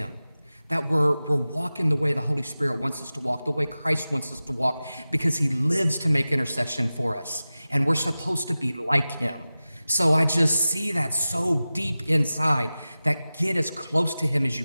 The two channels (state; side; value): inverted; both; correlation -0.96